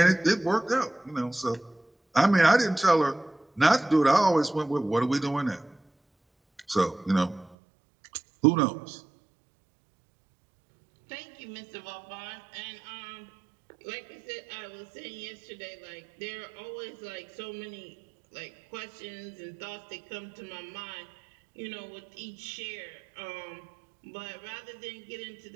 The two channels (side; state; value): left; drops out; at 7.6 s